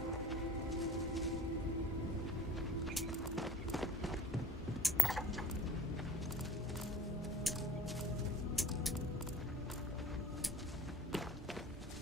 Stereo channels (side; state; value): both; normal; correlation 0.45